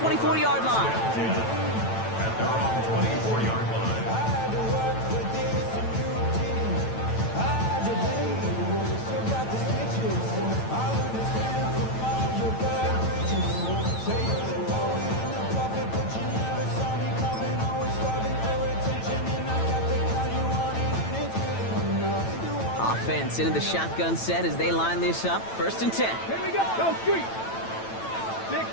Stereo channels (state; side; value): late; right; 9.0 ms